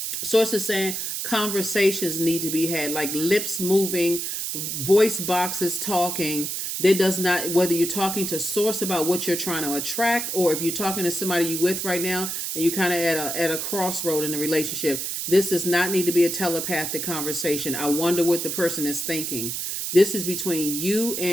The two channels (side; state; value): right; noise; hiss, 3 dB below the sound